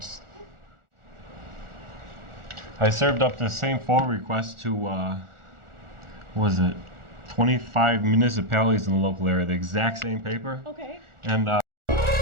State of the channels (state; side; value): late; left; 1.4 ms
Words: I served up the same FOIL request to, what was it, 25 municipalities in the local area, the exact same paper. Okay. And